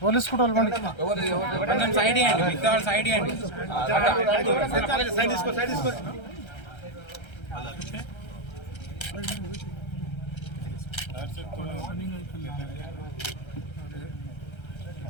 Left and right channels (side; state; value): right; late; 1.3 ms